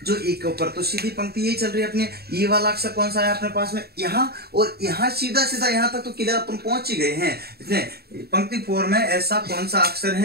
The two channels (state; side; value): late; left; 0.46 ms